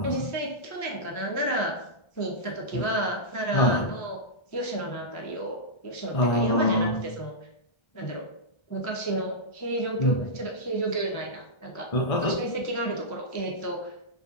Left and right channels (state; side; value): late; right; 1.3 ms